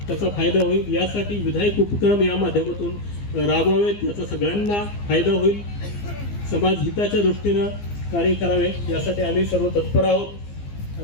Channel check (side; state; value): right; late; 15 ms